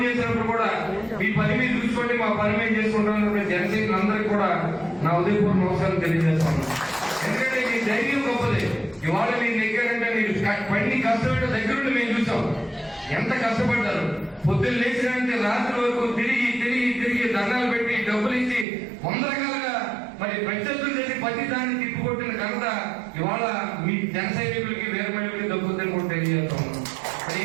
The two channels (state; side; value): drops out; left; at 18.7 s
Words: చేసినప్పుడు కూడా మీ పని మీరు చూసుకోండి, మా పని మేము చేసుకుంటాం. జనసైనికులందరికీ కూడా నా ఉదయపూర్వక నమస్కారం తెలియజేస్తాను. ఎందుకంటే మీ ధైర్యం గొప్పది. ఇవాళ మీరు నెగ్గారంటే మీరు పని కష్టపడే దగ్గరుండి మేము చూసాం ఎంత కష్టపడ్డారు. పొద్దున్న లేచినంటే రాత్రి వరకు తిరిగి దండాలు పెట్టి డబ్బులు ఇచ్చి 100 రకాలుగా మరి ప్రత్యర్థులు చేసి ప్రతి దాన్ని తిప్పుకొట్టిన ఘనత ఇవాళ మీ జన సైనికులకి వేరే మహిళలకి దక్కుతుందని కూడా తెలియజేస్తాం.